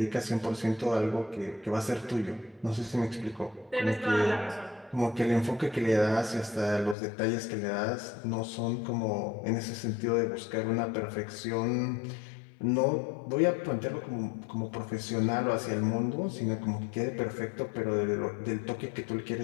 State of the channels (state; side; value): drops out; right; at 7.0 s